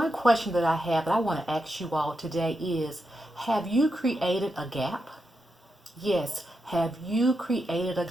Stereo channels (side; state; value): both; normal; correlation 0.86